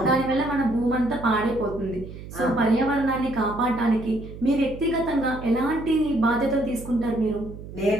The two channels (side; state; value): right; noise; hum, 13 dB below the sound